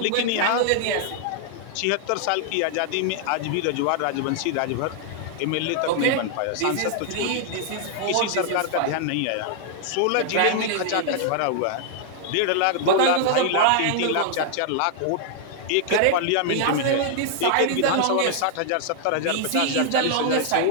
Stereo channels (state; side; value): different; both; correlation 0.00